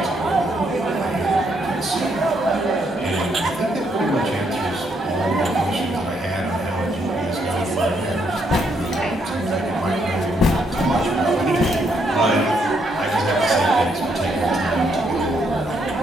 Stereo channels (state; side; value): normal; both; correlation 0.74